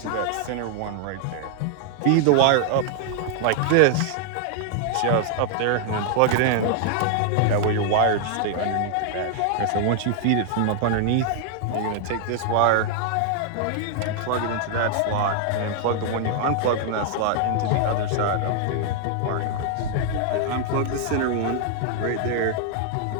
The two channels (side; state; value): both; different; correlation 0.00